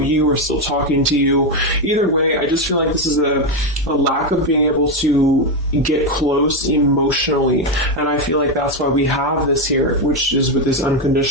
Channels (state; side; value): normal; both; correlation 0.08